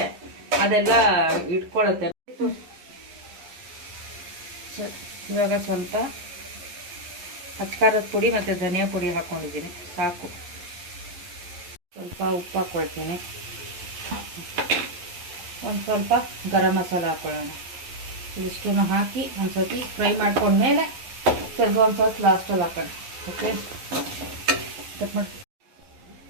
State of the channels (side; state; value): left; late; 11 ms